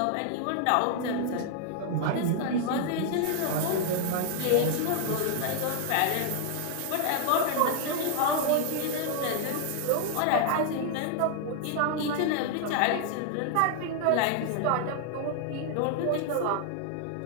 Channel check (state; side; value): different; both; correlation 0.00